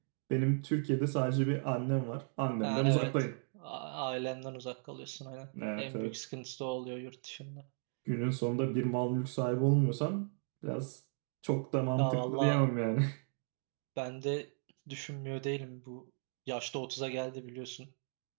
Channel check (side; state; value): left; silent; 54 dB below the other